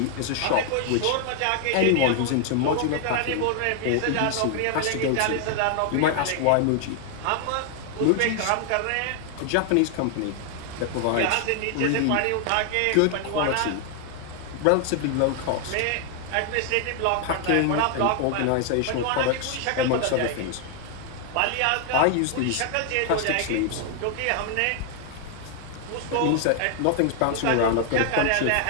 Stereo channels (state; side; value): different; both; correlation 0.00